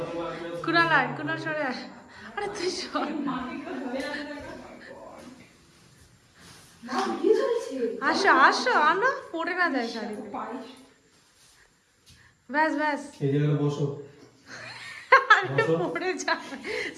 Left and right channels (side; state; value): both; identical; correlation 1.00